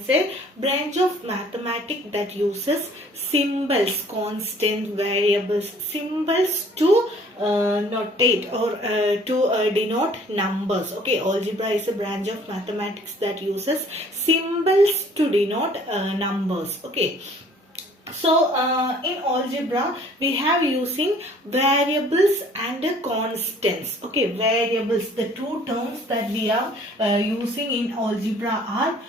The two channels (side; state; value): both; normal; correlation 0.55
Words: a branch of mathematics that uses symbols, constant variables, symbols to notate or to denote numbers. Okay, algebra is a branch of mathematics that uses symbols to denote numbers. Okay. So, in algebra, we have using variables and constants. Okay, variables, the two terms that we are using in algebra are